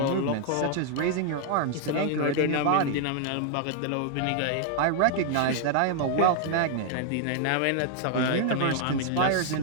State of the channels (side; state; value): both; different; correlation 0.00